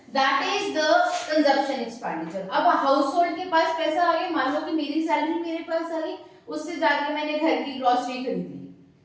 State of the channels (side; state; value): both; identical; correlation 1.00